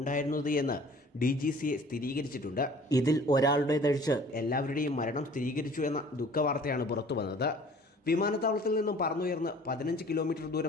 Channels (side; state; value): both; normal; correlation 0.50